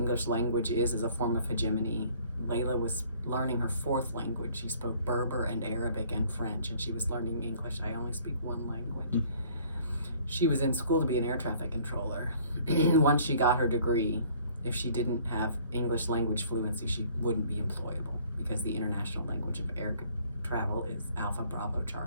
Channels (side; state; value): both; inverted; correlation -0.56